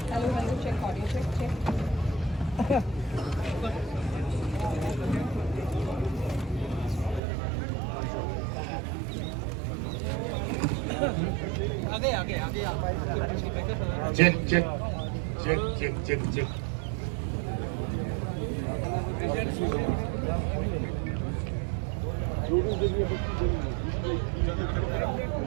check check check check check check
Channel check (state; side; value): drops out; left; at 7.2 s